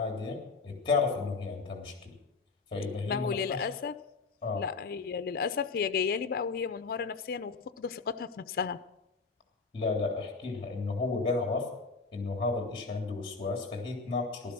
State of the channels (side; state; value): right; quieter; 4.4 dB